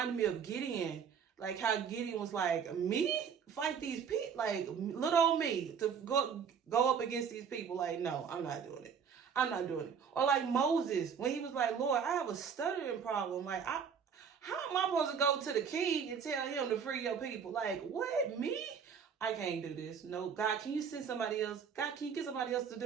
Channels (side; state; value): left; quieter; 6.9 dB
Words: me of Gideon. Like how Gideon was like, me? Fight these people? Like little old me to go up against these people. Like, no, I'm not doing it. I'm not doing it. Or like Moses, when he was like, Lord, I have a stuttering problem. Like, how am I supposed to go to the king and tell him to free your people? Like, what? Me? I can't do this. No, God, can you send somebody else? God, can you get somebody else to